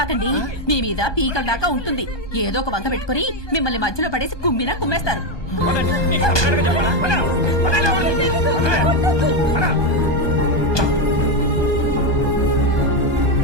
మీ మీద పీకల దాకా ఉంటుంది. ఏదో ఒక వంక పెట్టుకుని మిమ్మల్ని మధ్యలో పడేసి కుమ్మినా కుమ్మేస్తారు. పదండి, నీకు సపరేట్గా చెప్పాలా? పదండి లోపలికి. పద.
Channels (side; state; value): right; late; 1.2 ms